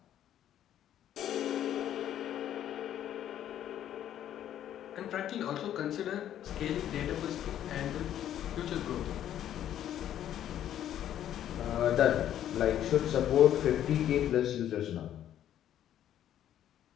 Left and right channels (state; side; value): quieter; right; 11.1 dB